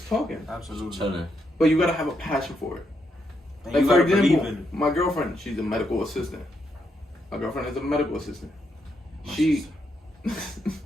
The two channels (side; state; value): both; normal; correlation 0.79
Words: talking. Absolutely. chilling. But you gotta have a passion for it. And Like you for gotta believe example, in it. my girlfriend, she's a medical assistant. My girlfriend is a medical assistant. She